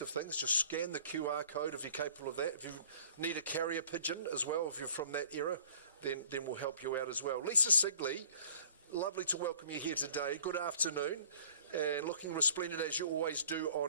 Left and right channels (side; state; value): both; inverted; correlation -0.52